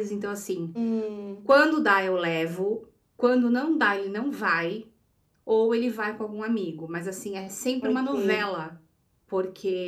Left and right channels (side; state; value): both; identical; correlation 1.00